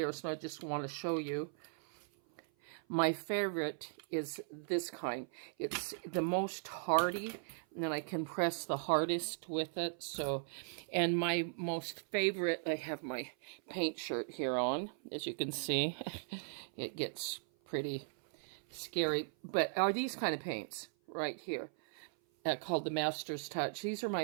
so I just want to show you. My favorite is this kind. It's the most hardy, and then I can press the hardest with it. So, and my most favorite, I have my paint shirt here on, as you can see. It gets pretty scary, but are these kind of paints right here called the Master's Touch. These are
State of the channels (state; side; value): silent; left; 52 dB below the other